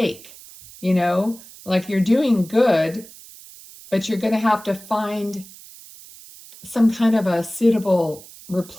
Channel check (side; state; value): right; noise; hiss, 19 dB below the sound